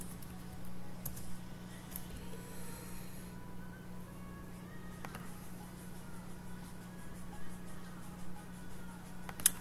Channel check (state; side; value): identical; both; correlation 1.00